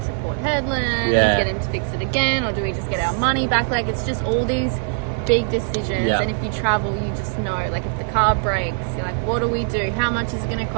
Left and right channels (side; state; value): left; silent; digital silence